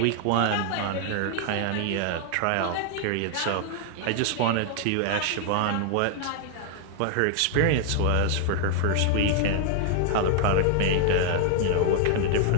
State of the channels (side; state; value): both; different; correlation 0.00